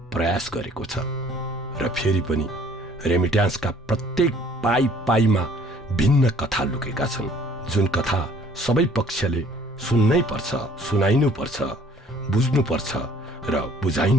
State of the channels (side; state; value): both; normal; correlation 0.56